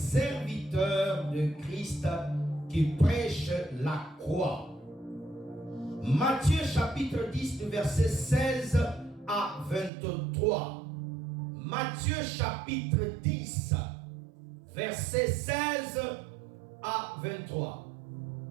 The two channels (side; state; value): left; drops out; at 9.9 s